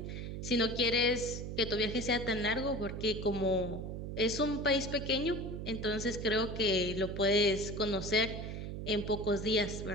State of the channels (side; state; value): right; noise; hum, 6 dB below the sound